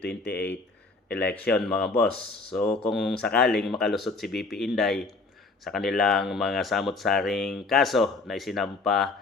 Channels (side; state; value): right; quieter; 3.7 dB